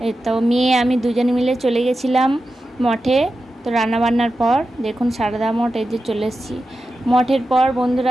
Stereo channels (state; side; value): normal; both; correlation 0.91